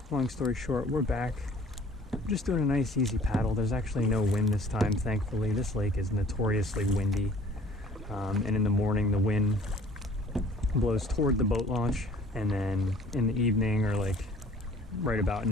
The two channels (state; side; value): normal; both; correlation 0.52